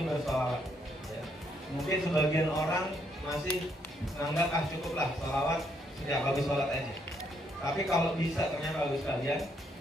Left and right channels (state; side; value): normal; both; correlation 0.73